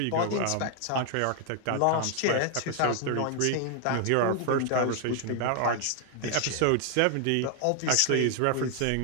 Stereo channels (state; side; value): different; both; correlation 0.00